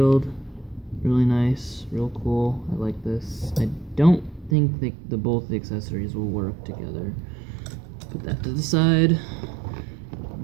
really nice, real cool. I like this. I don't think both the accessories will work together. Put that to the side.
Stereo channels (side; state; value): left; drops out; at 4.5 s